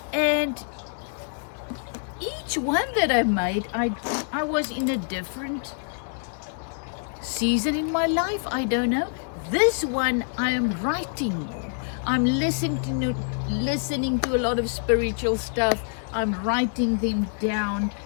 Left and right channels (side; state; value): right; silent; 61 dB below the other